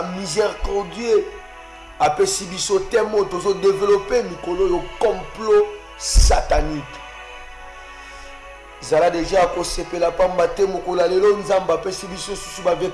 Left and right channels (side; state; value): both; identical; correlation 1.00